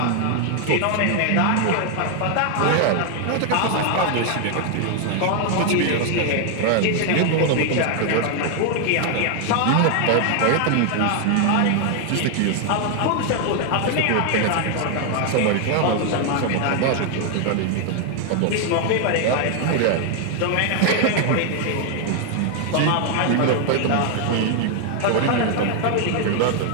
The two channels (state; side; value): different; both; correlation 0.00